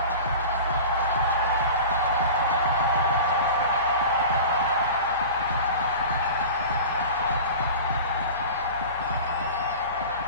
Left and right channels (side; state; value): both; inverted; correlation -0.36